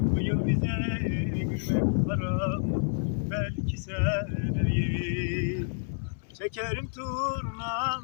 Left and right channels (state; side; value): silent; right; 58 dB below the other